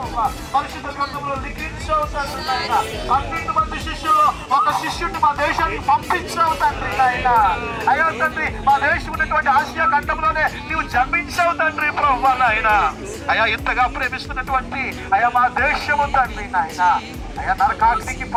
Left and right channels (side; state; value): both; identical; correlation 1.00